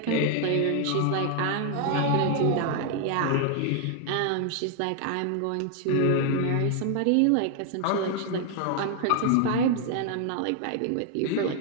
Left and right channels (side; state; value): both; different; correlation 0.00